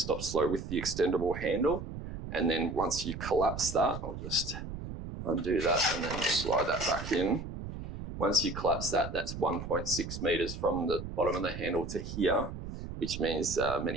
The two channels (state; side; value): noise; right; rumble, 8 dB below the sound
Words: slow with the extendable handle. And then once you collapse that, I'll just undo that and then slide that back in. Once you collapse that, that's 1.6 meters from the bottom of the handle to here, which means